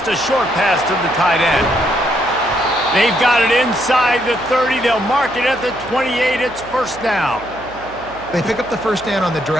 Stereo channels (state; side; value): noise; right; hum, 20 dB below the sound